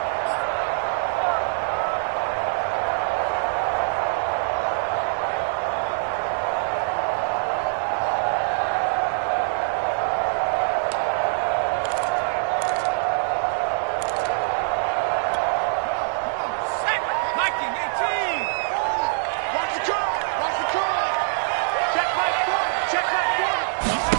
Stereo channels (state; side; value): silent; left; digital silence